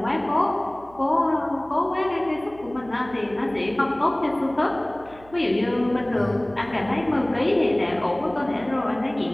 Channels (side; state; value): right; noise; hum, 23 dB below the sound